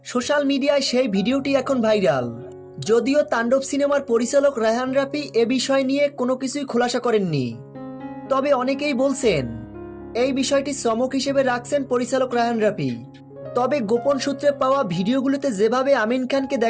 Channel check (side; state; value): both; identical; correlation 1.00